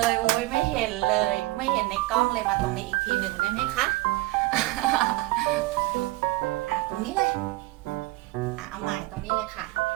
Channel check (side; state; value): left; quieter; 19.8 dB